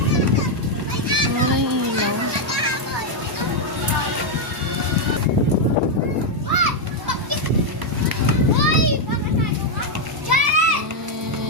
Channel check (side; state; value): both; normal; correlation 0.01